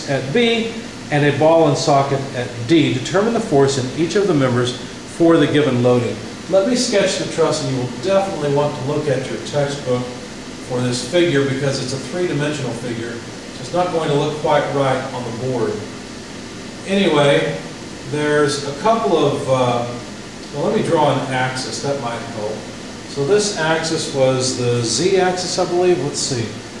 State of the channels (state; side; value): identical; both; correlation 1.00